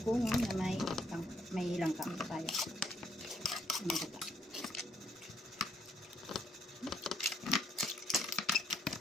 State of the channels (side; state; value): both; normal; correlation 0.69